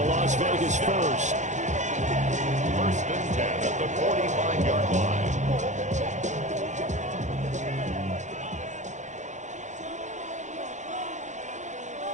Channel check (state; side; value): late; left; 0.35 ms